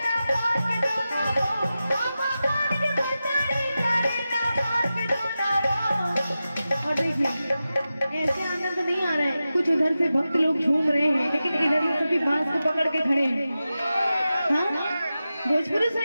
ऐसे आनंद नहीं आ रहा है। कुछ उधर से भक्त लोग झूम रहे हैं लेकिन इधर से सभी बांस को पकड़ के खड़े हैं। हाँ भोजपुरी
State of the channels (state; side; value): inverted; both; correlation -0.93